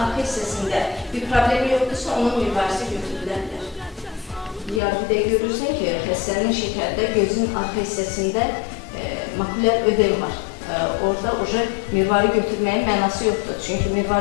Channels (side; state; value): right; drops out; at 4.8 s